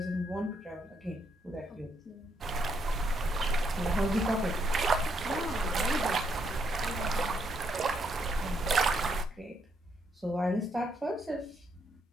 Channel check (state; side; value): normal; both; correlation 0.75